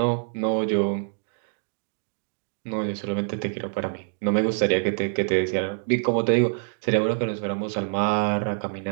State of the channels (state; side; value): silent; left; 61 dB below the other